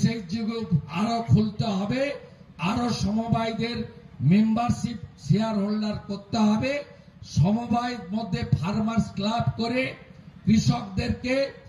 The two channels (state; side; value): identical; both; correlation 1.00